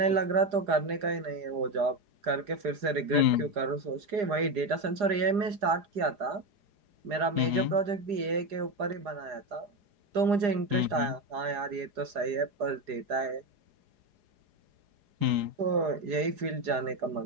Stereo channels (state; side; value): late; left; 4.9 ms